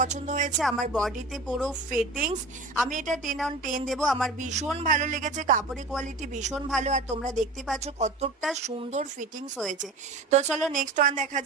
হয়েছে। আমার বডিতে পুরো ফিটিংস, আমি এটা 10/10 দেবো। আমার ভীষণ ভালো লেগেছে, কাপড়ের কোয়ালিটি ভীষণ ভালো, আর তোমরা দেখতে পাচ্ছ কতটা সুন্দর ফিটিংস হয়েছে। তো চলো নেক্সট ওয়ান দেখা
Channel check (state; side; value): quieter; left; 3.2 dB